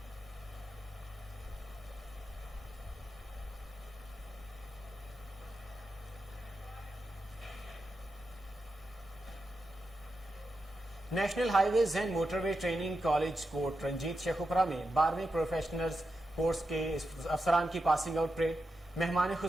National highways and motorway training college Kot Ranjit Sheikhupura में 12वीं प्रोफेशनल्स कोर्स के अफसरान की पासिंग आउट परेड। मेहमान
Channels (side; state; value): both; normal; correlation 0.88